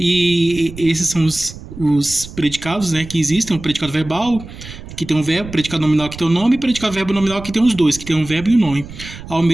esses são os predicados, né, que existem, o predicado verbal, que tem um verbo, predicado nominal que tem um nome, e predicado verbo nominal que tem os dois, que tem um verbo e um nome, ao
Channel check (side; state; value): right; noise; rumble, 14 dB below the sound